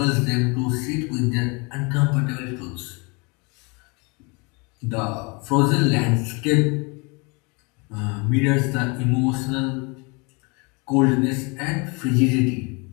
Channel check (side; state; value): right; quieter; 30.0 dB